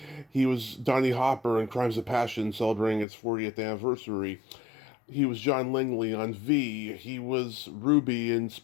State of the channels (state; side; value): drops out; right; at 3.1 s